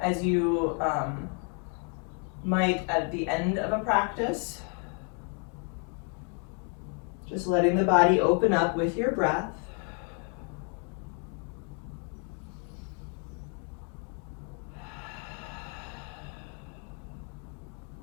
you might at the end of a practice. Just letting the body open up with your breath.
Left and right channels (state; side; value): quieter; right; 39.4 dB